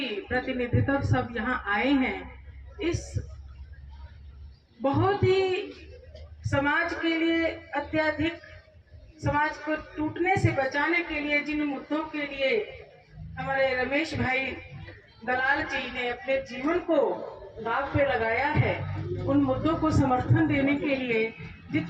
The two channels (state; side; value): identical; both; correlation 1.00